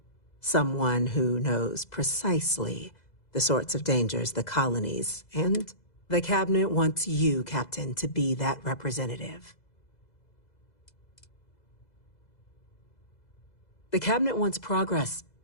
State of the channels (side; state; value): right; late; 2.0 ms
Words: Someone who knows precisely the sorts of dangers the colonies and the Cabinet wants you, Captain, to be that representative. The Cabinet wants progress,